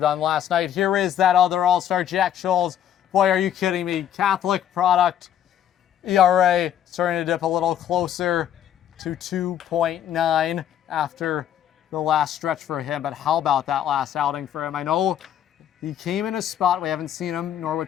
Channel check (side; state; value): right; quieter; 10.3 dB